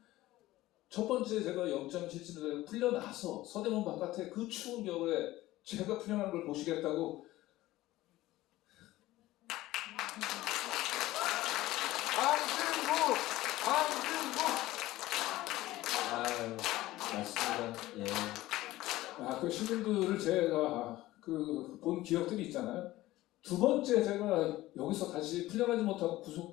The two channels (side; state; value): right; quieter; 16.9 dB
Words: 첫 번째 제가 영장 실질을 풀려나서 서대문 바깥에 그 추운 겨울에 제가 풀려나는 걸 보시겠다고 아유, 맞습니다. 예. 그 시민들을 제가 본 기억들이 있잖아요. 두 번째 제가 여기서 다시 풀려나지 못하고